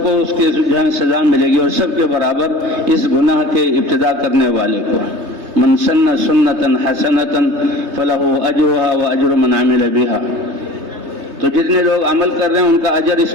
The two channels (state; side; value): late; left; 3.2 ms